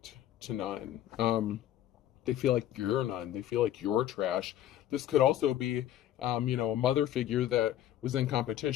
to none. They feel like you're none. They feel like you're trash. This could also be, you know, a mother figure that was in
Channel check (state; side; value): quieter; right; 12.1 dB